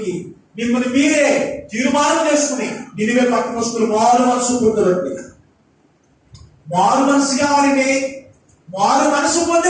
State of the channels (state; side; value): identical; both; correlation 1.00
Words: మిమ్మల్ని మీరే తీర్మానం చేసుకుని నినివే పట్టణస్తులు మారు మనసు పొందరండి. మారు మనసు కావాలండి. మారు మనసు పొంది